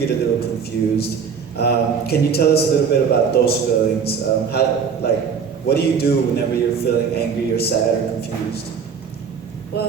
a little confused. Can you tell us a little bit about those feelings? What do you do whenever you're feeling angry or sad or confused?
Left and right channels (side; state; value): left; quieter; 6.5 dB